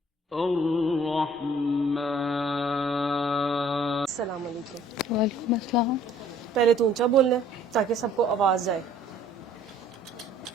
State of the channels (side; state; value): both; normal; correlation 0.57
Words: الرحمن. السلام علیکم. وعلیکم السلام. پہلے تو اونچا بولنا ہے تاکہ سب کو آواز جائے،